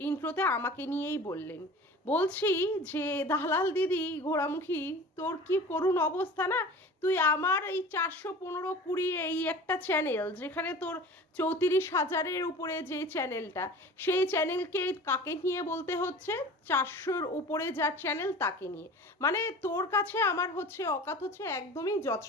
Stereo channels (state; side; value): normal; both; correlation 0.39